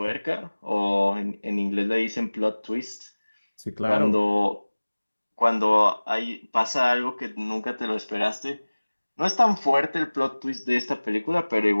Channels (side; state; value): both; inverted; correlation -1.00